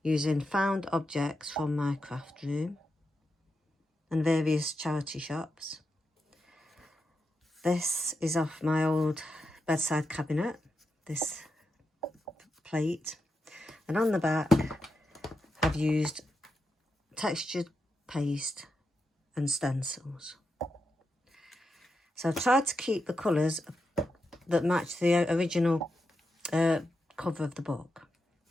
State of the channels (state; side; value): normal; both; correlation 0.86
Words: found objects from my craft room and various charity shops. This is off my old bedside cabinet, this plate, and on the back I've used textured paste and stencils. So I've tried to keep the colours that match the original cover of the book.